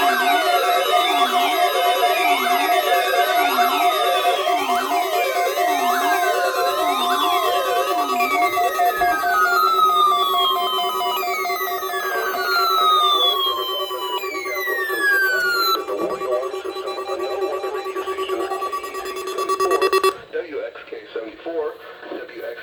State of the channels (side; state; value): both; identical; correlation 1.00